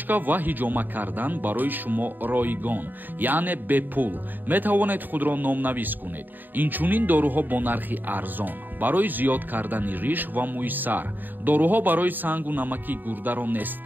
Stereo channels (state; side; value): late; left; 0.090 ms